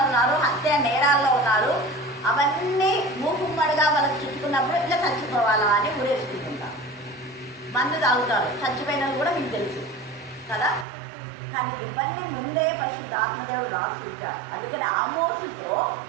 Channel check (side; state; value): left; drops out; at 10.9 s